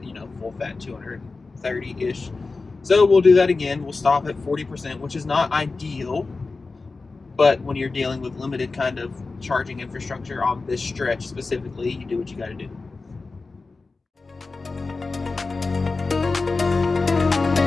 full fat 230-ish. So we'll do that again. We'll stop at 40%, which is not ideal, but when you're dealing with limited kind of charging infrastructure on this stretch specifically, you do what you got to do.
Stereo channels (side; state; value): right; quieter; 3.9 dB